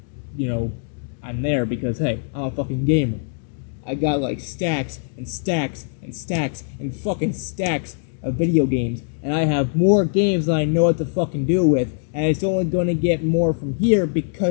you know, I'm there, because hey, I'm a fucking gamer. I got like stacks and stacks and stacks and fucking stacks of video games, and I have more games than I know what to fucking do with, and it's only gonna get more from here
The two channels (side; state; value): right; silent; digital silence